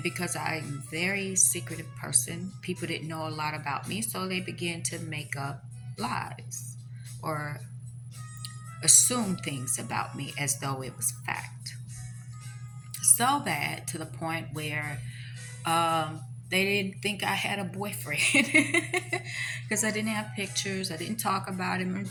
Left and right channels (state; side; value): identical; both; correlation 1.00